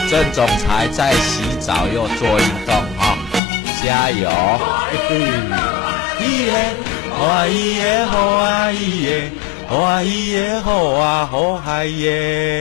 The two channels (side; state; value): right; drops out; at 3.4 s